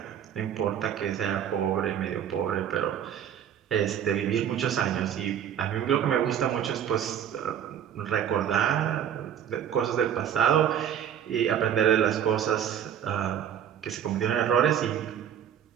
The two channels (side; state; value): left; quieter; 9.4 dB